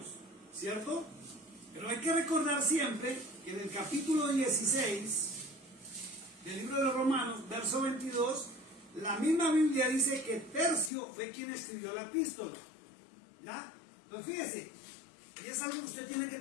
¿cierto? Pero hay que recordar siempre que en el capítulo 16 del libro de los Romanos, verso 22, la misma Biblia dice que Tercio fue quien escribió la epístola. ¿Ya? Entonces fíjese, y es algo que usted tiene que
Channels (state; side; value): drops out; right; at 10.9 s